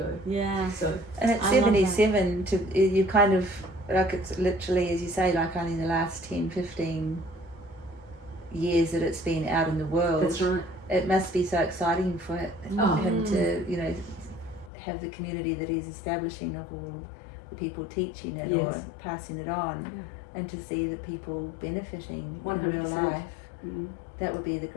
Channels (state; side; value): drops out; right; at 14.7 s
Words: Yeah. So. And at 77, you kind of, like, it's literally, as you say, like only in the last 10, 15 years that it's been out in the world. That's right. It must be so exciting for him to, you know, have the community that he's establishing of all the people teaching it or passing it on, and to see the people benefiting 100%. In real life. That would be the